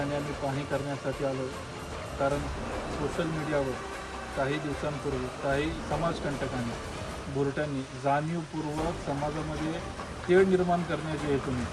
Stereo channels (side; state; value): both; identical; correlation 1.00